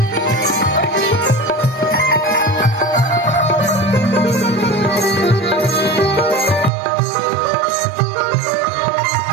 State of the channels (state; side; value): drops out; left; at 6.7 s